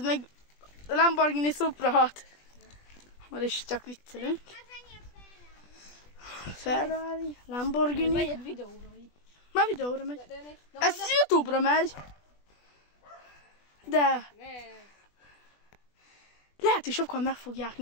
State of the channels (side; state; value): right; late; 20 ms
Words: meg a Lamborghini Supra 6. Már is csak viccelünk. Ferrari, Lamborghini. Megy egy videóra. Már videóra megy. Ez YouTube-ra megy. De lehet, hogy sokan meg fogják